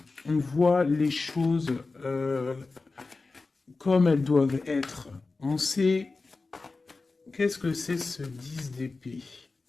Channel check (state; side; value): quieter; right; 3.8 dB